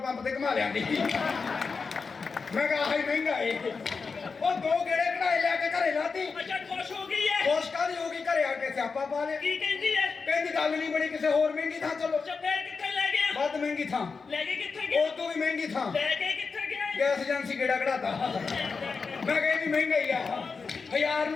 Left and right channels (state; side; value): quieter; right; 4.9 dB